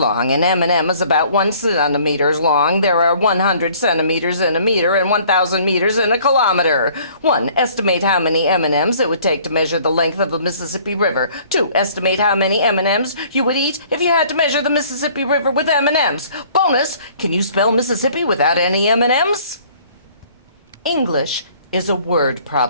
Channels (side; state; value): both; inverted; correlation -0.55